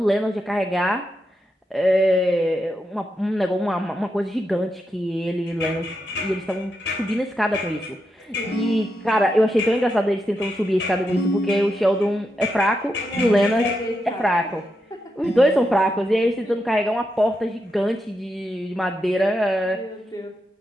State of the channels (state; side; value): normal; both; correlation 0.85